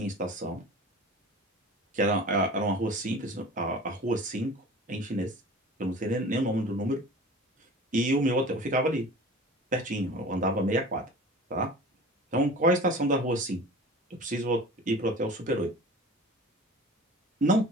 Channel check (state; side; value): normal; both; correlation 0.39